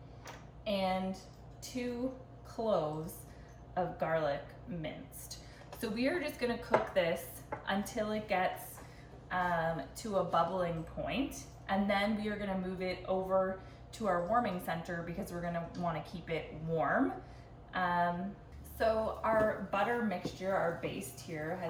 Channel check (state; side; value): identical; both; correlation 1.00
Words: and 2 cloves of garlic minced. So we are just gonna cook this until it gets to a bubbling point, and then we are gonna move it over to our warming center because we're gonna wanna keep it warm. So our butter mixture, our baste here,